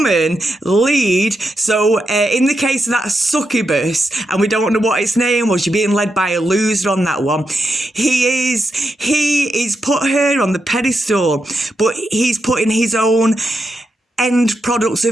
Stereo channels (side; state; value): both; normal; correlation 0.85